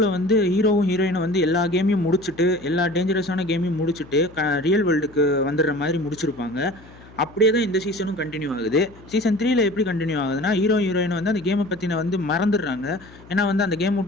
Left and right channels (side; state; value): left; noise; hum, 22 dB below the sound